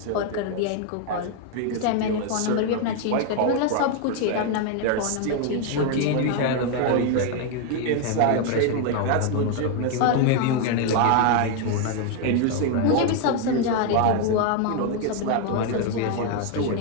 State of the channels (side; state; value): both; different; correlation 0.01